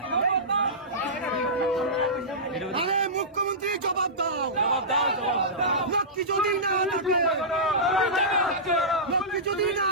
আরে মুখ্যমন্ত্রী জবাব দাও, জবাব দাও জবাব দাও লক্ষ্মী যদি না থাকে, লক্ষ্মী যদি না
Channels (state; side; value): normal; both; correlation -0.17